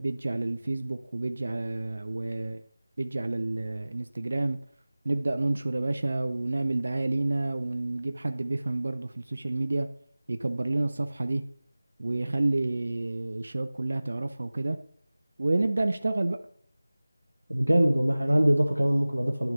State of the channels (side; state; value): both; inverted; correlation -0.99